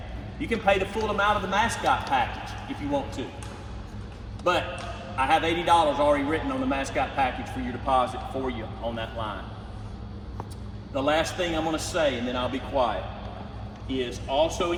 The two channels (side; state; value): both; identical; correlation 1.00